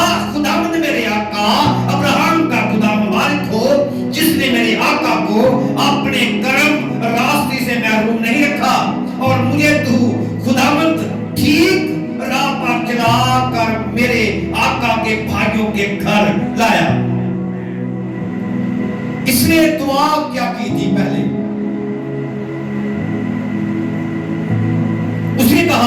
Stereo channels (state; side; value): identical; both; correlation 1.00